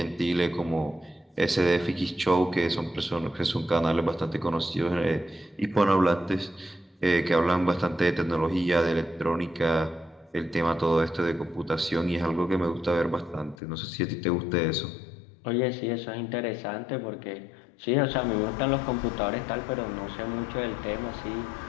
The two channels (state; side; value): drops out; right; at 13.6 s